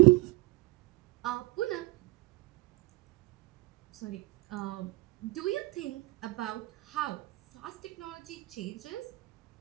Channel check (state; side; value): quieter; left; 22.0 dB